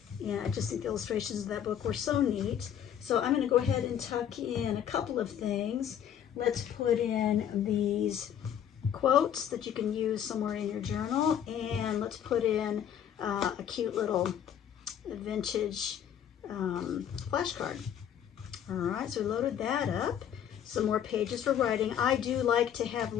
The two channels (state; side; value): quieter; right; 9.4 dB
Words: And I just think the illustrations of that book were so neat. So I'm going to go ahead and tuck in a couple of things. Let's put in these quotes that you can use somewhere in your journal, and let's put in a cute little vintage flashcard. All right, so we loaded that up. Some more pages for writing. I do like to have